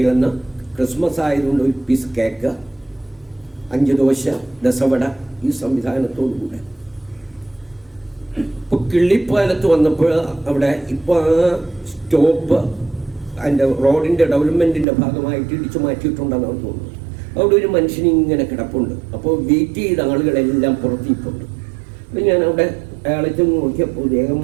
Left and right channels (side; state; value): left; drops out; at 14.9 s